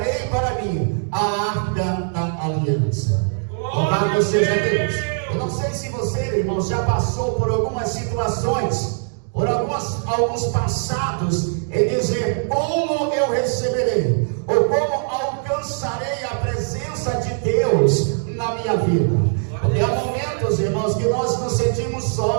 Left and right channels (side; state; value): left; silent; digital silence